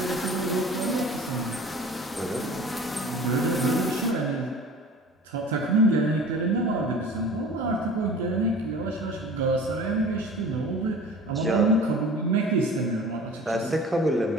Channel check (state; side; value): normal; both; correlation 0.41